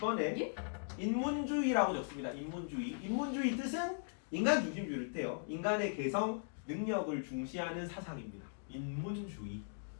인문주의라고 적습니다. 인문주의 뜻은 인간 중심주의를 뜻해요. 인간의 개성, 능력을 중시하는 사상입니다. 인문주의.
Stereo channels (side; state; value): right; silent; digital silence